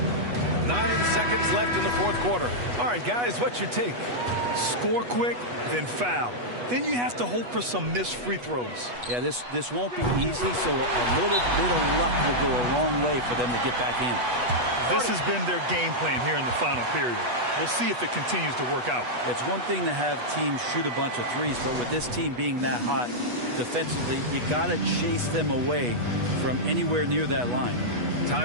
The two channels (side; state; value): left; late; 8.2 ms